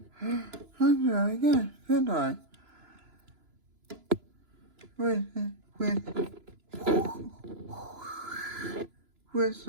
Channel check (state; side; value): late; left; 2.9 ms